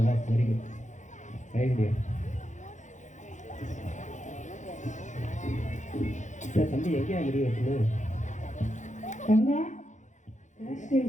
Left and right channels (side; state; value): right; late; 0.35 ms